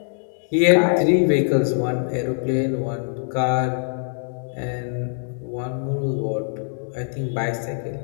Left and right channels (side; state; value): right; silent; digital silence